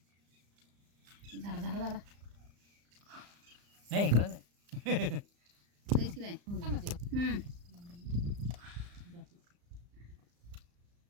झाडा झाडा झाडा नाही इकडं नाही लईच की नाही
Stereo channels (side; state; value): left; late; 34 ms